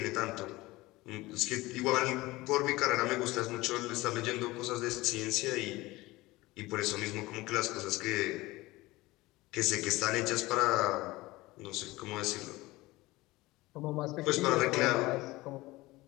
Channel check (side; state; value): right; quieter; 20.0 dB